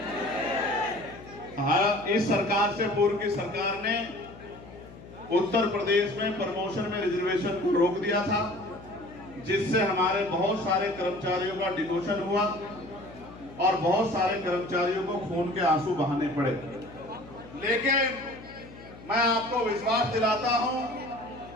हाँ, इस सरकार से पूर्व की सरकार ने उत्तर प्रदेश में प्रमोशन में रिजर्वेशन को रोक दिया था, जिससे हमारे बहुत सारे कर्मचारियों का डिमोशन हुआ और बहुत सारे कर्मचारियों को खून के आंसू बहाने पड़े। लेकिन मैं आपको विश्वास दिलाता हूं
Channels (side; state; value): left; noise; hum, 18 dB below the sound